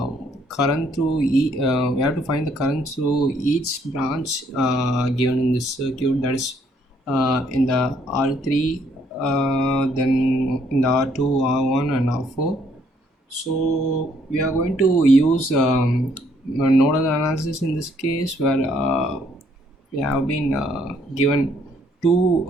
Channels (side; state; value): both; normal; correlation 0.67